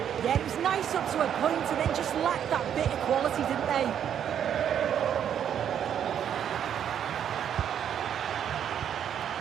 Yeah, it was nice up to a point and then just lacked that bit of quality, didn't they?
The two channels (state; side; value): quieter; left; 9.1 dB